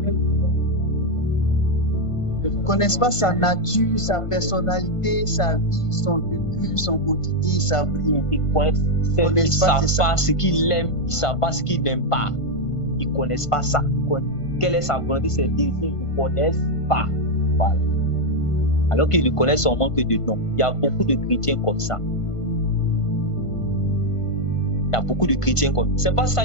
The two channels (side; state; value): right; late; 1.5 ms